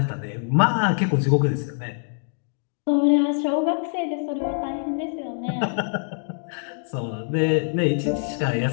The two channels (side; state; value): right; silent; digital silence